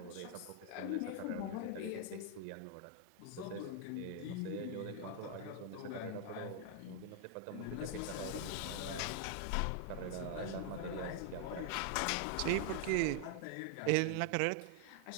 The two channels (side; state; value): both; different; correlation 0.00